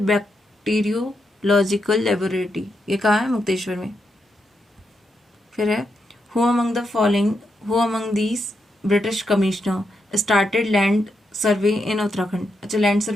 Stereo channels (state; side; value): normal; both; correlation 0.83